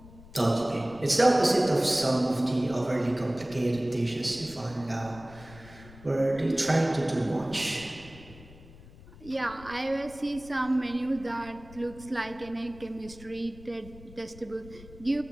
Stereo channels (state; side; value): noise; left; rumble, 19 dB below the sound